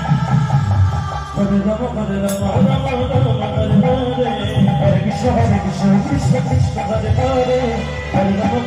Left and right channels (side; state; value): both; identical; correlation 1.00